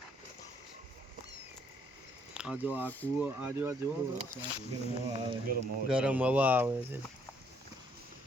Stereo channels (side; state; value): both; normal; correlation 0.68